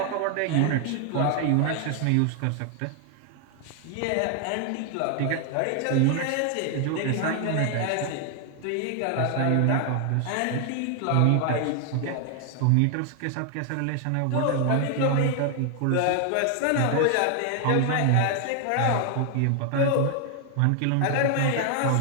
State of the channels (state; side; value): different; both; correlation 0.00